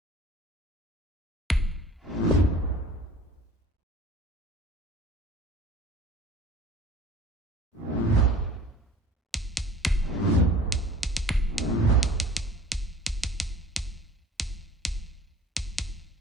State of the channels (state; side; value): normal; both; correlation 0.46